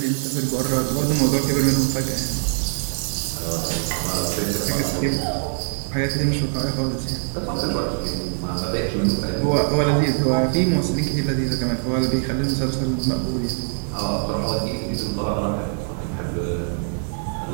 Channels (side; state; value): left; silent; digital silence